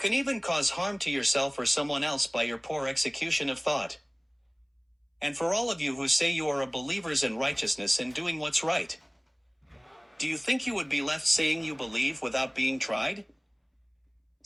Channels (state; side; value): identical; both; correlation 1.00